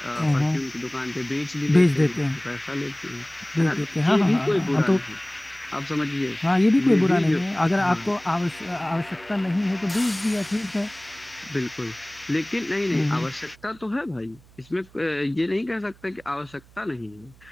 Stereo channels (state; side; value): noise; right; hum, 26 dB below the sound